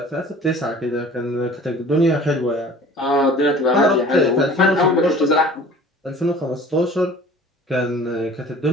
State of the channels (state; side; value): normal; both; correlation 0.46